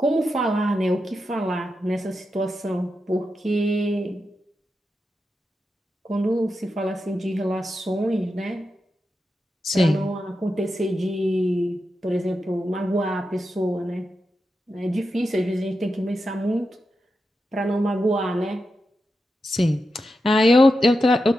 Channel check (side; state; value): both; normal; correlation 0.89